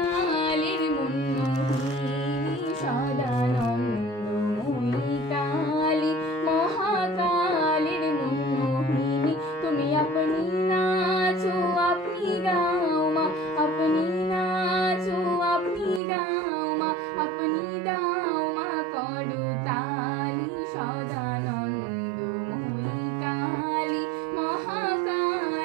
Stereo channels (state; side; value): drops out; left; at 16.0 s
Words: মুন্মোহিনী। সদানন্দ মুনি কালী মহাকালীর মুন্মোহিনী। তুমি আপনি নাচো আপনি গাও মা, আপনি নাচো আপনি গাও মা, আপনি দাও মা করতালি। সদানন্দ মুনি কালী